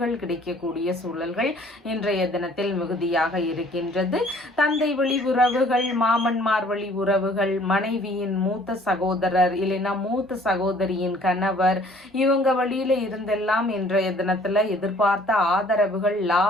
கிடைக்கக்கூடிய சூழல்கள் இன்றைய தினத்தில் மிகுதியாக இருக்கின்றது. தந்தை வழி உறவுகள், மாமன்மார் வழி உறவுகள், மனைவியின் மூத்த சகோதரர் இல்லைன்னா மூத்த சகோதரியின் கணவர் இவங்க வழியில இருந்தெல்லாம் இன்றைய தினத்துல எதிர்பார்த்த ஆதரவுகள்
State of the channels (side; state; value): both; normal; correlation 0.56